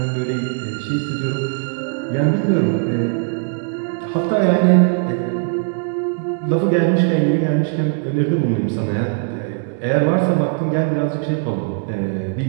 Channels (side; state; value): left; silent; 58 dB below the other